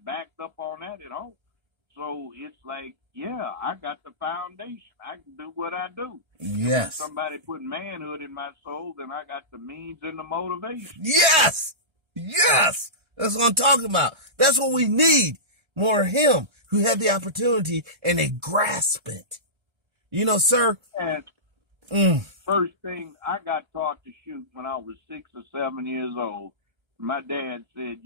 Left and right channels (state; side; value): late; left; 1.3 ms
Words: backed up on that at home. So it's like, I got the foundation. I can do what I do. Yes. If somebody put manhood in my soul, then I got the means and the motivation. Yes. Yes. That's what I'm talking about. That's what we need. More of him who had the opportunity and they grasp it. Sir. And first thing, I got taught to shoot when I was 6 or 7 years old. My dad said,